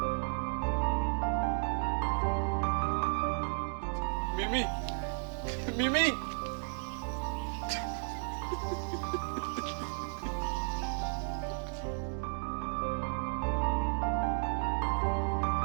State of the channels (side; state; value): left; silent; digital silence